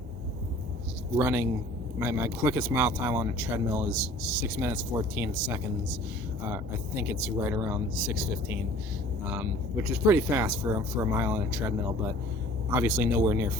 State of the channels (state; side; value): normal; both; correlation 0.49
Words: running, my quickest mile time on a treadmill is 6 minutes 14 seconds. I think it's right around 6:15, which is pretty fast for a mile on a treadmill, but obviously nowhere near